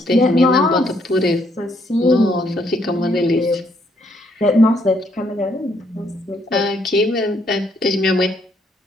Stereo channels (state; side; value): normal; both; correlation 0.71